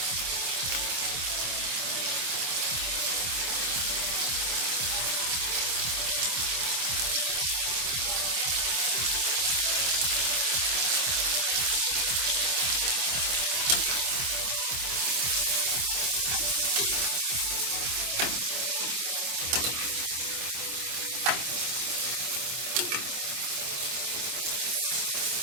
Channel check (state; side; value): late; left; 25 ms